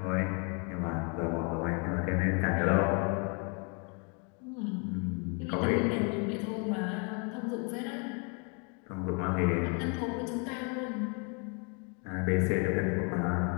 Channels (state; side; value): quieter; right; 35.7 dB